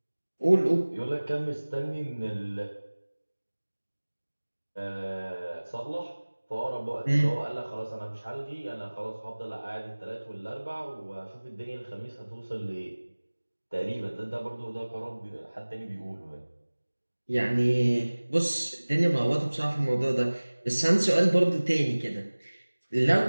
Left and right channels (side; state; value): both; inverted; correlation -1.00